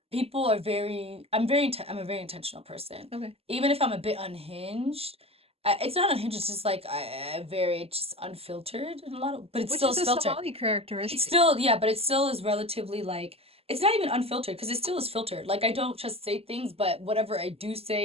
people are I'm a very intentional person. Okay. Even if I'm a bit unhinged, it's not unhinged, it's just like I very just unfiltered in a lot of, but it Which still is is a filtered. Somali It's characteristic. still, yeah, but it still is relatively like, it's not even unfiltered because it still is filtered. Like I don't just say things, but whatever I do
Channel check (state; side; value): late; left; 0.29 ms